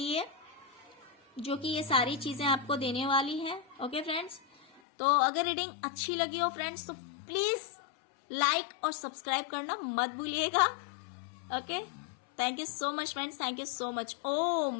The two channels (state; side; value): drops out; right; at 4.8 s